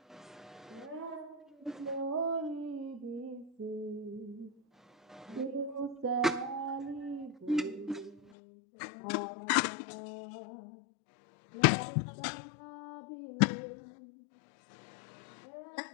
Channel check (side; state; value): right; drops out; at 8.3 s